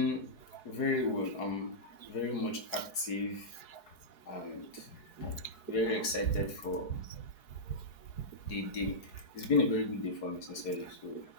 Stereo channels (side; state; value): right; late; 4.7 ms